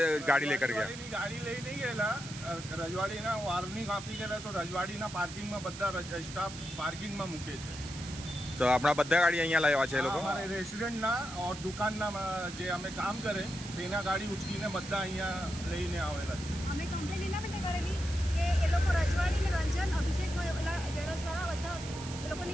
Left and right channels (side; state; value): right; noise; hiss, 12 dB below the sound